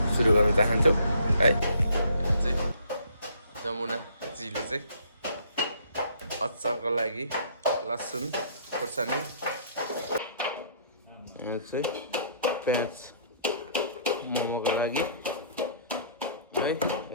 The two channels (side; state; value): both; inverted; correlation -0.59